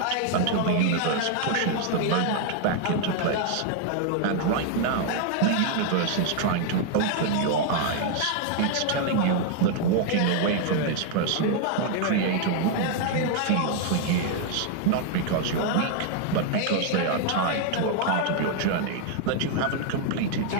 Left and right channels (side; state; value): both; different; correlation 0.00